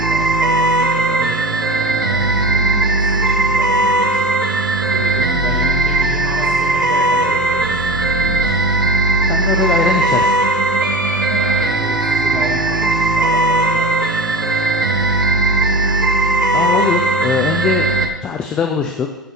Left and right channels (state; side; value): normal; both; correlation 0.31